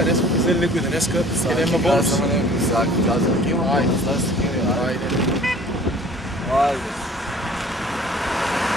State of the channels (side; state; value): both; normal; correlation 0.50